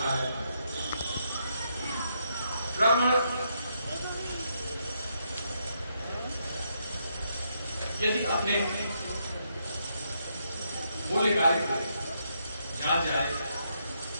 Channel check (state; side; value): inverted; both; correlation -0.77